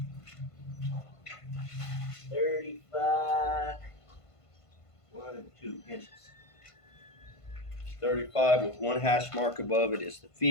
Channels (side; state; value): right; late; 1.5 ms